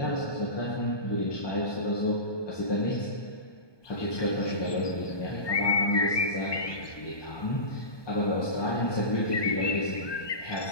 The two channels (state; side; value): late; right; 1.2 ms